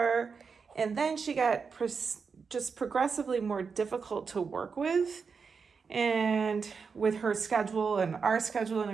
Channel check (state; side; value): quieter; left; 5.5 dB